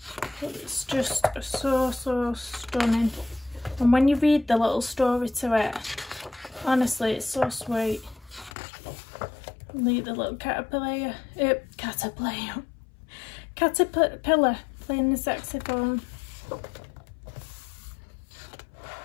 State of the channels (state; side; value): drops out; right; at 8.5 s